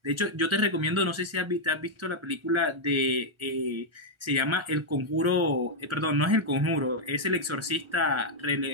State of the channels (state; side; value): late; left; 1.3 ms